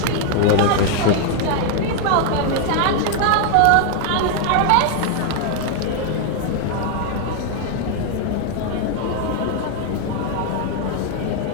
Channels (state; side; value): different; both; correlation 0.00